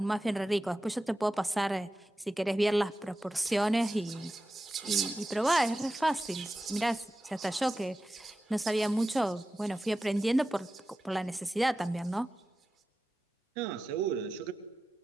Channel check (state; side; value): normal; both; correlation 0.93